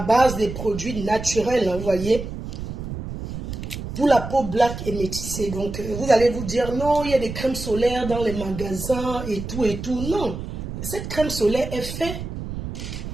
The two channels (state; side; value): noise; right; rumble, 7 dB below the sound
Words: base des produits naturels, vous voyez, pour la peau black et métissée. Donc, vous allez vous dire, non, il y a des crèmes solaires dans les magasins et tout et tout. Non, cette crème solaire est faite